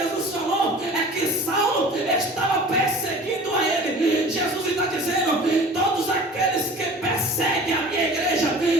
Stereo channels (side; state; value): both; normal; correlation 0.43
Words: falou que Saulo estava perseguindo a ele. Jesus está dizendo: todos aqueles que perseguem a minha igreja